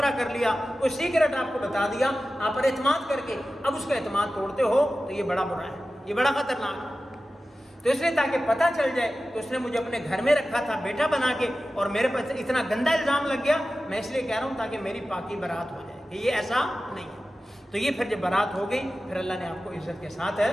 کر لیا، کوئی سیکرٹ آپ کو بتا دیا، آپ پر اعتماد کر کے اب اس کا اعتماد توڑتے ہو، تو یہ بڑا برا ہے، یہ بڑا خطرناک ہے۔ تو اس نے تاکہ پتہ چل جائے، تو اس نے مجھے اپنے گھر میں رکھا تھا بیٹا بنا کے، اور میرے پاس اتنا گندا الزام لگ گیا، میں اس لیے کہہ رہا ہوں تاکہ میری پاکی برات ہو جائے کہ یہ ایسا نہیں ہے۔ تو یہ پھر جب برات ہو گئی، پھر اللہ نے آپ کو عزت کے ساتھ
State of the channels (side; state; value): both; normal; correlation 0.94